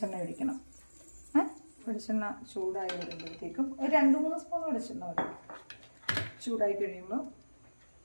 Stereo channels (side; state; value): both; inverted; correlation -1.00